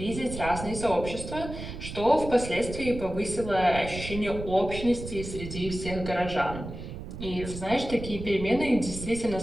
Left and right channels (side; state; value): right; noise; rumble, 9 dB below the sound